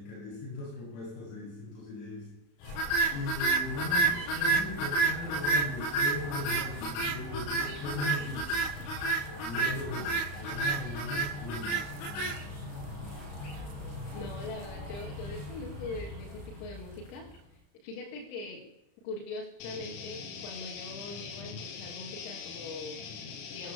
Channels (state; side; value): late; right; 35 ms